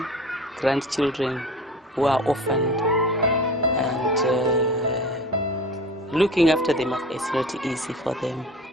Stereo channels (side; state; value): both; normal; correlation 0.38